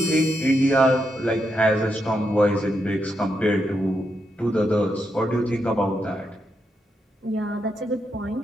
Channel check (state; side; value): normal; both; correlation 0.82